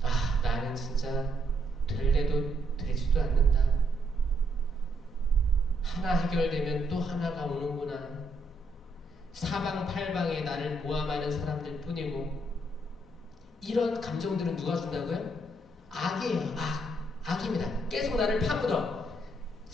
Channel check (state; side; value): normal; both; correlation 0.74